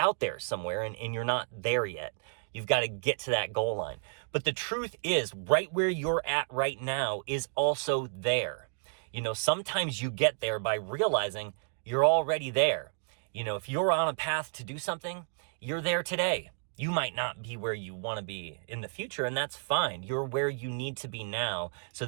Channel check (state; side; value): silent; left; digital silence